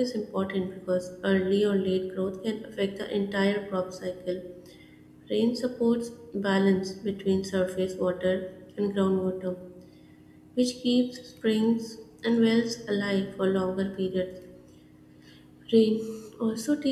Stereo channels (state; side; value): identical; both; correlation 1.00